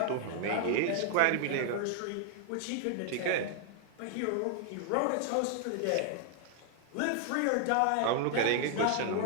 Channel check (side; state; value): both; different; correlation 0.00